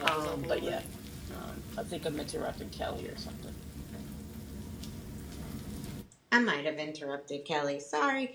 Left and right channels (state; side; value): identical; both; correlation 1.00